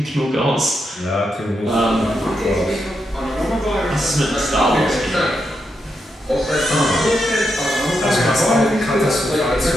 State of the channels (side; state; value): both; normal; correlation 0.83